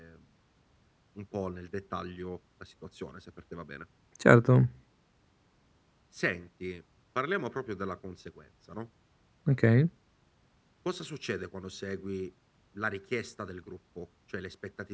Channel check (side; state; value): both; identical; correlation 1.00